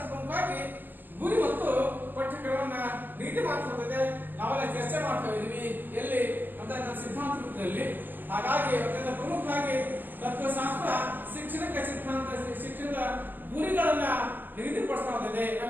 ಪ್ರಮುಖವಾಗಿ ಗುರಿ ಮತ್ತು ಪಠ್ಯಕ್ರಮವನ್ನ ನೀತಿ ಮಾಡ್ತಿರ್ತದೆ. ನಾವೆಲ್ಲ ಚರ್ಚೆ ಮಾಡ್ತಾ ಇದೀವಿ ಎಲ್ಲಿ ಅಂತ ಸಿದ್ಧಾಂತ ರೂಪದಲ್ಲಿ. ಹಾಗಾಗಿ ಅತ್ಯಂತ ಪ್ರಮುಖವಾಗಿ ತತ್ವಶಾಸ್ತ್ರ ಶಿಕ್ಷಣಕ್ಕೆ ಶಿಕ್ಷಣದ ಗುರಿಗಳನ್ನ ನಿಗದಿಪಡಿಸ್ತಾ ಹೋಗಿದೆ.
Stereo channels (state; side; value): late; left; 0.092 ms